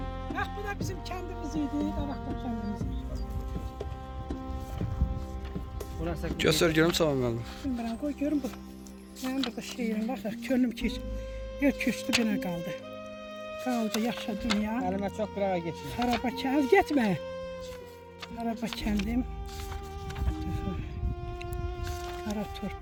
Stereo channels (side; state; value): both; identical; correlation 1.00